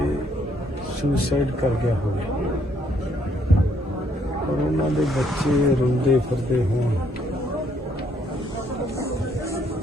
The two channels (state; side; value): normal; both; correlation 0.69